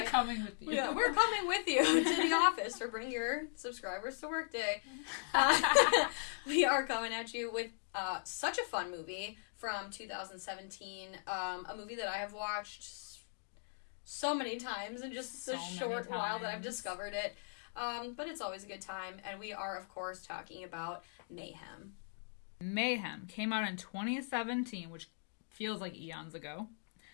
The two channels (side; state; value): right; silent; digital silence